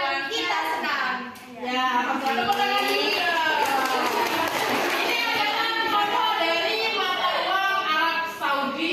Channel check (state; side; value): identical; both; correlation 1.00